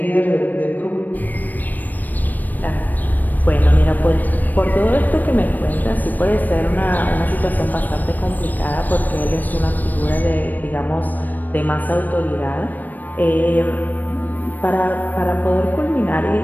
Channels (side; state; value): right; late; 0.087 ms